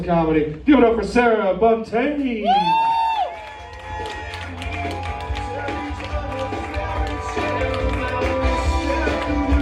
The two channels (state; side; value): identical; both; correlation 1.00